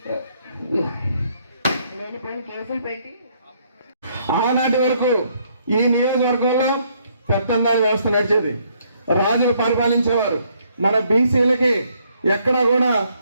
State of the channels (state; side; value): inverted; both; correlation -0.69